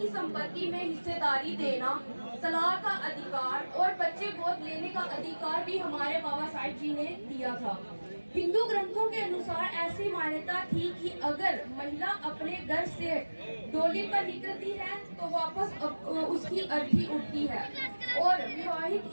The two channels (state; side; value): inverted; both; correlation -1.00